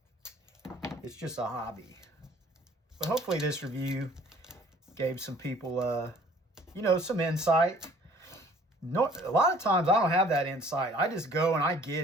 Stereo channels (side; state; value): both; normal; correlation 0.54